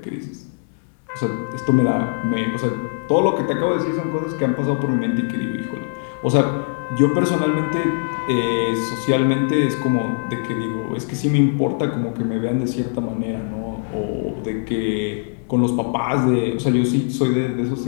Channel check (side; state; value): right; silent; digital silence